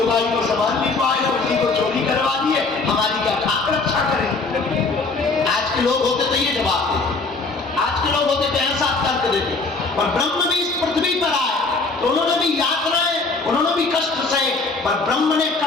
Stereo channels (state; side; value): quieter; right; 3.8 dB